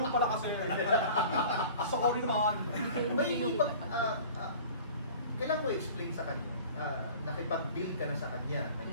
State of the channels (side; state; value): both; inverted; correlation -0.44